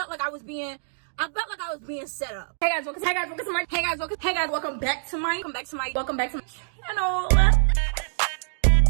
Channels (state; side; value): silent; left; digital silence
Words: like I was being set up. Hey guys, welcome to my welcome back to my channel. Welcome